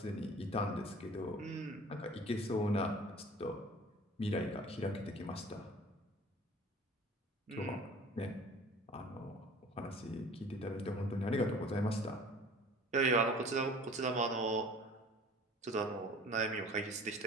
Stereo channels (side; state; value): both; normal; correlation 0.46